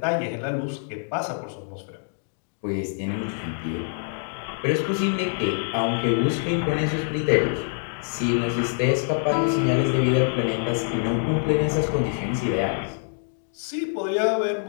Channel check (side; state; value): right; silent; digital silence